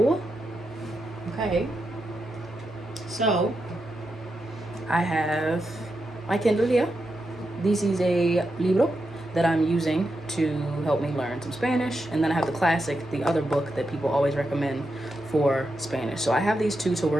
okay, so I have my Kindle here. This is a libro that I'm using to help me learn some Spanish. And then I have the classic, the other book that people always recommend for Spanish. So I have these two to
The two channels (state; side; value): normal; both; correlation 0.86